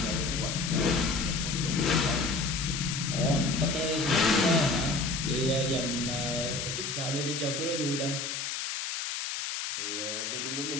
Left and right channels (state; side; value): noise; left; hiss, 3 dB below the sound